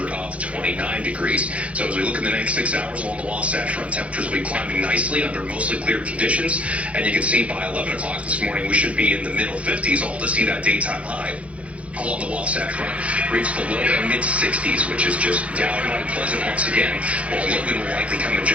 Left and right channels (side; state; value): left; late; 0.063 ms